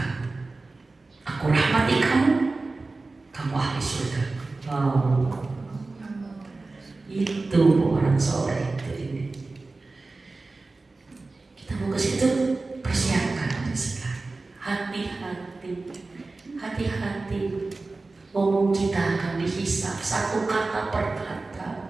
Aku rahmati kamu, kamu ahli surga. Oh, itu orang soleh itu ini. Kita mau ke situ, persiapkan sekarang. Hati-hati. Ngomong kita akan dihisap satu kata per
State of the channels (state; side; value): quieter; left; 3.5 dB